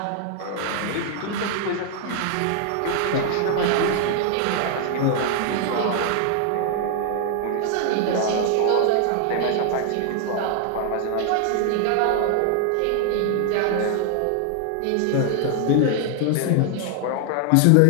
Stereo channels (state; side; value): different; both; correlation 0.00